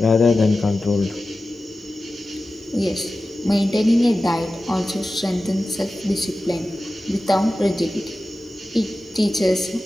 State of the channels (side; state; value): both; normal; correlation 0.94